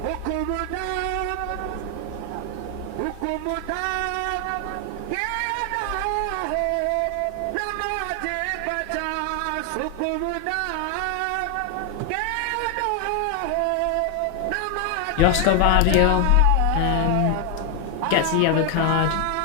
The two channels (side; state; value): both; different; correlation 0.00